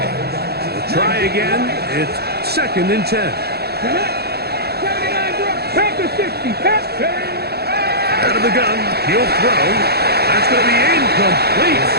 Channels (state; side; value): late; left; 0.46 ms